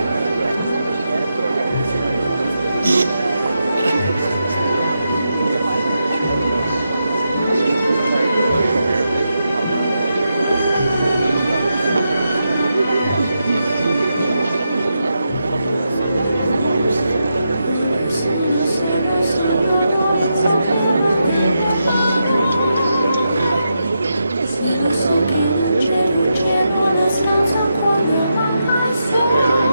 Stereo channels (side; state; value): both; inverted; correlation -0.85